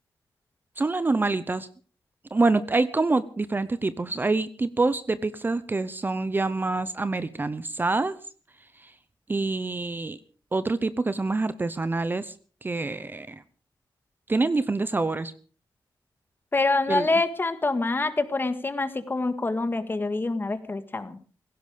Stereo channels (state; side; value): normal; both; correlation 0.85